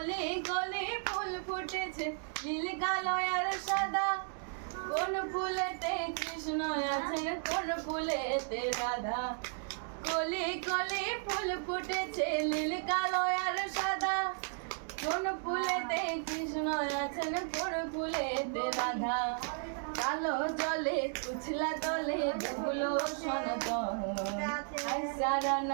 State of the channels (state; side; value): silent; left; 55 dB below the other